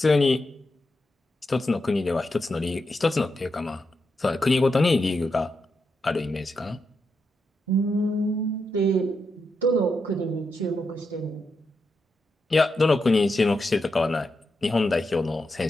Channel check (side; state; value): both; normal; correlation 0.85